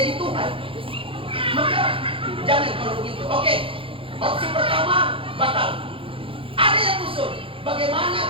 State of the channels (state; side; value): late; left; 0.26 ms